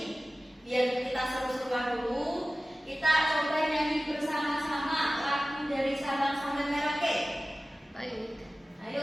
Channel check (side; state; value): both; normal; correlation 0.97